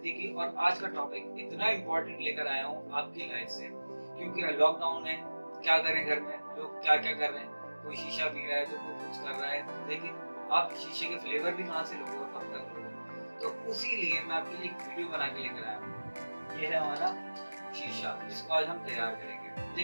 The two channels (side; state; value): both; inverted; correlation -1.00